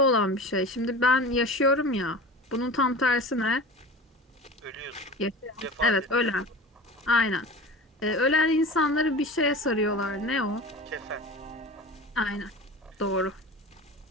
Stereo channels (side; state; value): both; normal; correlation 0.34